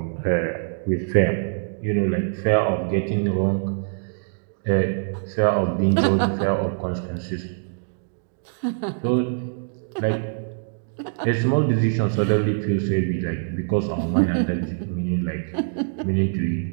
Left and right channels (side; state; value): left; silent; digital silence